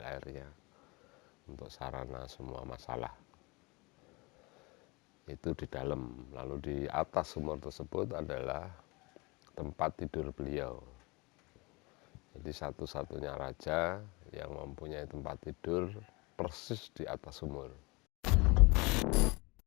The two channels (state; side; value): quieter; right; 26.5 dB